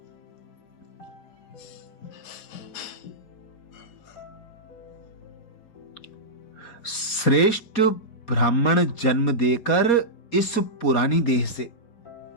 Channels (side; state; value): right; late; 4.3 ms